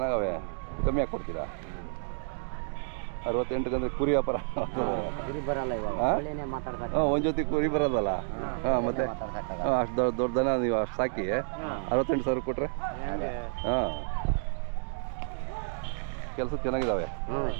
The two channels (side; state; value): left; silent; digital silence